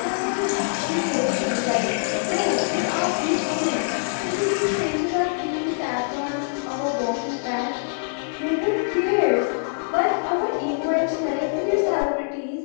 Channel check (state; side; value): silent; right; digital silence